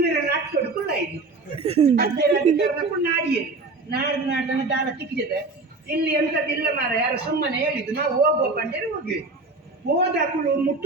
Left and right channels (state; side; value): quieter; left; 3.5 dB